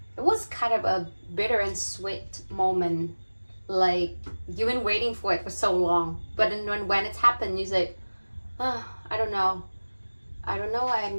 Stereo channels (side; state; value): both; inverted; correlation -1.00